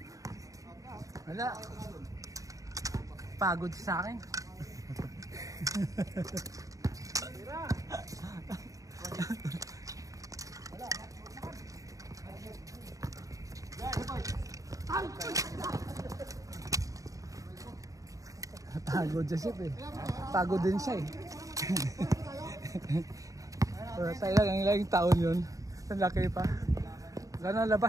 Wala. Pagod sa akin. Pagod siya siya eh. Pagod din siya eh. Tayo lang yung taon yun. Ang laki pa. Gano'n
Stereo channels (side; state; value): left; late; 0.16 ms